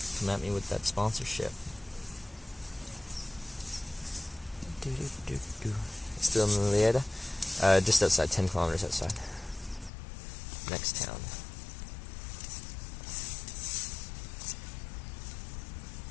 come at me with that sponsorship. Still in Lleida? Just outside, 10 kilometers outside. Next town.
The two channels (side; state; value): right; drops out; at 9.9 s